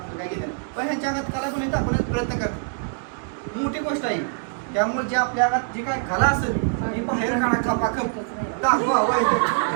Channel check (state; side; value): silent; left; digital silence